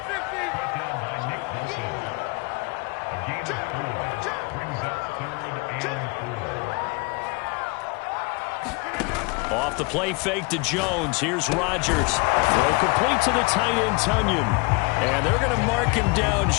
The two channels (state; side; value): quieter; right; 29.2 dB